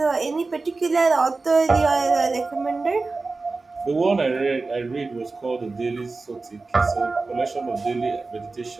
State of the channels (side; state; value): left; quieter; 3.7 dB